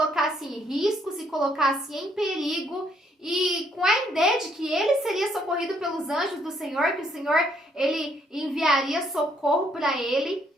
em risco, se colocasse em perigo, e com a ideia de que ele seria socorrido pelos anjos do Senhor, que o Senhor ele enviaria socorro para ele.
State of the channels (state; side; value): normal; both; correlation 0.69